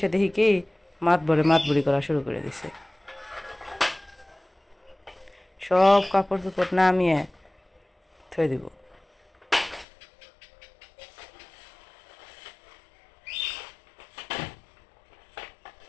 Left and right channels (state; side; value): drops out; right; at 9.9 s